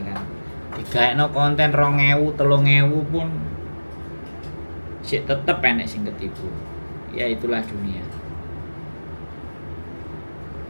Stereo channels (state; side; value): inverted; both; correlation -1.00